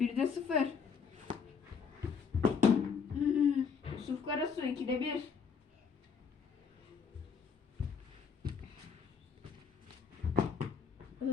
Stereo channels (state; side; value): quieter; right; 6.2 dB